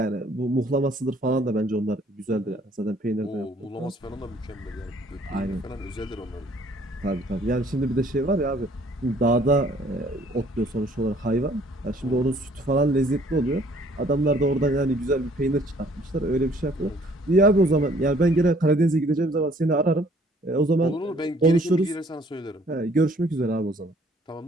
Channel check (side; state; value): both; normal; correlation 0.60